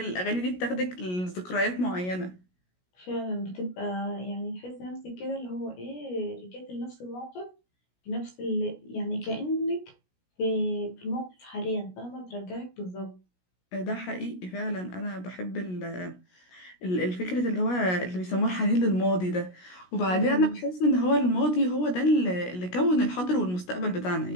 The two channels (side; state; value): right; late; 16 ms